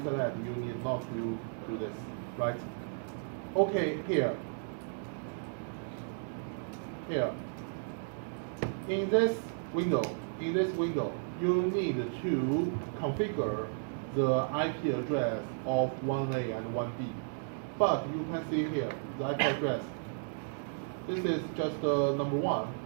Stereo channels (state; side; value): silent; left; digital silence